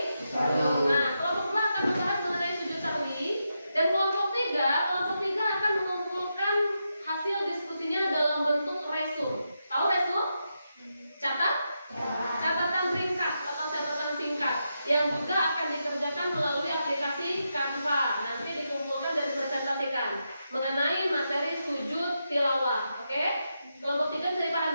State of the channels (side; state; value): both; inverted; correlation -0.85